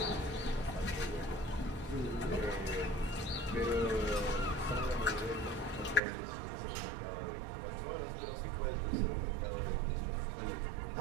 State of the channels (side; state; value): left; drops out; at 6.0 s